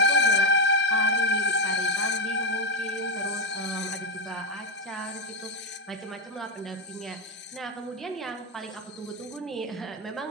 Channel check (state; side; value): normal; both; correlation 0.08